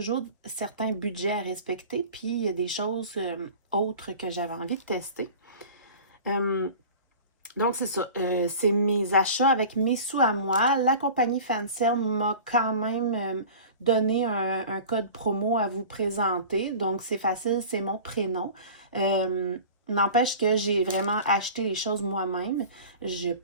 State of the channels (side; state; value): both; inverted; correlation -0.40